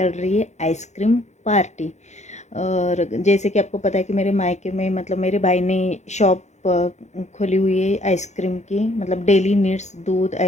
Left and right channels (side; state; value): right; late; 0.33 ms